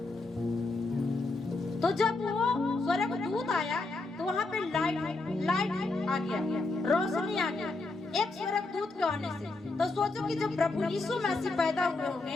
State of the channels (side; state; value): right; quieter; 3.3 dB